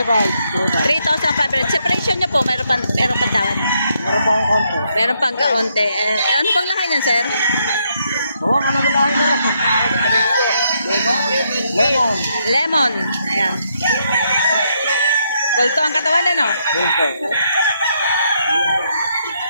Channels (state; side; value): inverted; both; correlation -0.76